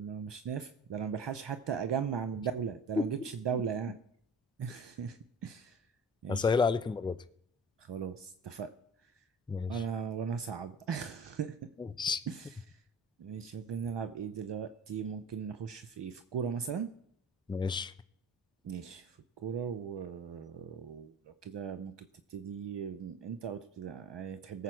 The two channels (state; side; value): normal; both; correlation 0.42